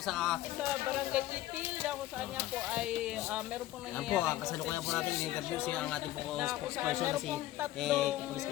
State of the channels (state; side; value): quieter; right; 15.1 dB